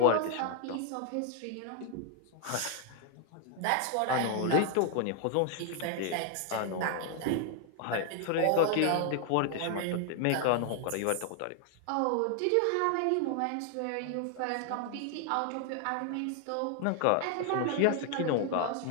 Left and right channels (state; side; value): different; both; correlation 0.00